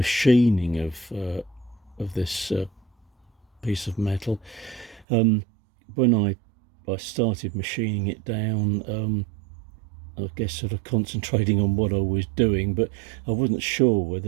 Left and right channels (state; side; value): drops out; left; at 5.1 s